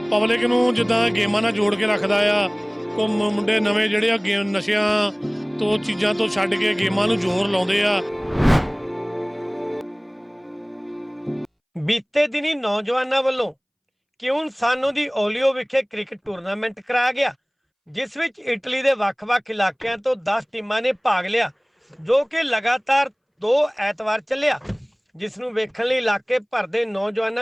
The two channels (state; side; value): identical; both; correlation 1.00